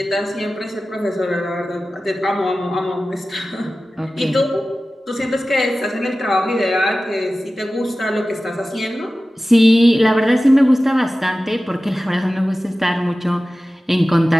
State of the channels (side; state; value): both; normal; correlation 0.95